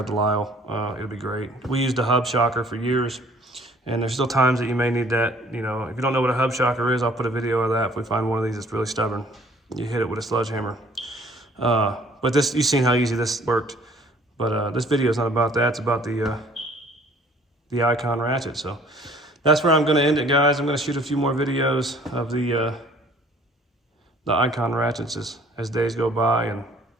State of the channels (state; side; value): normal; both; correlation 0.56